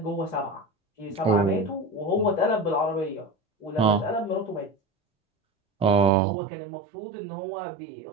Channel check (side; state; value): left; drops out; at 6.1 s